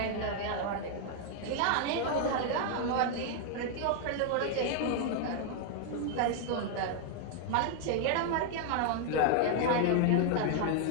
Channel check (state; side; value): different; both; correlation 0.00